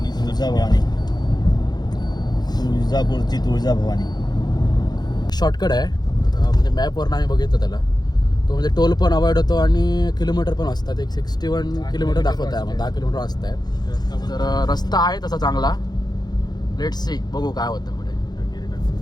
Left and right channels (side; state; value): right; late; 0.20 ms